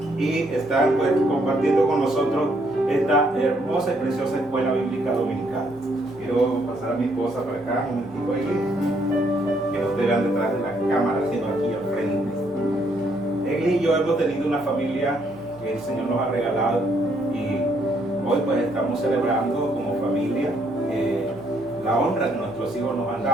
y están pues compartiendo con nosotros esta hermosa y preciosa escuela bíblica dominical. Quiero pasar a mi esposa para acá, un momentito ahí, que no te vean detrás de la cámara, sino aquí al frente. Él y yo hemos tenido una familia que el Señor nos ha regalado y hoy pues estamos celebrando como familia la honra que nuestros hijos nos han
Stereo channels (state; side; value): normal; both; correlation 0.71